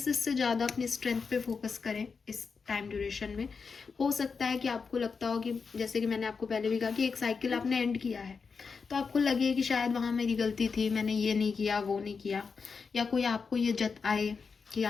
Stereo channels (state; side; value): quieter; right; 5.2 dB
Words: से ज़्यादा अपनी strength पे focus करें इस time duration में. हो सकता है कि आपको लगता हो कि, जैसे कि मैंने आपको पहले भी कहा, कि एक साइकिल आपने एंड किया है, तो आपको लगे कि शायद वहाँ मेरी गलती थी, मैंने ये नहीं किया, वो नहीं किया, या कोई आपको ये जताए कि